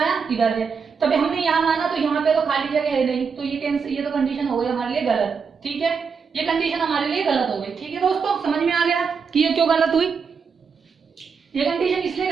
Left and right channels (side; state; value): left; quieter; 5.8 dB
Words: इधर है, तभी हमने यहाँ माना, तो यहाँ पे तो खाली जगह है नहीं, तो ये तो कंडीशन हो गई हमारे लिए गलत, ठीक है, ये कंडीशन हमारे लिए गलत हो गई, ठीक है दोस्तों। समझ में आ गया कि ये क्यों गलत हुई, ये कंडीशन इसलिए